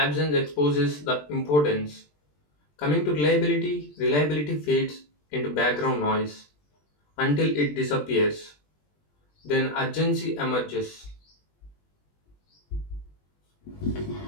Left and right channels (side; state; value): right; late; 20 ms